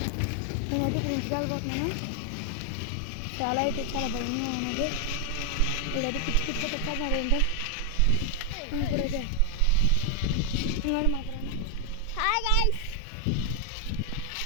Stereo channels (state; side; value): different; both; correlation 0.00